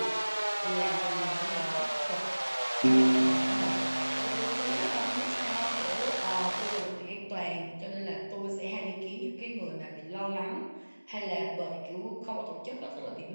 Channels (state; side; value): inverted; both; correlation -1.00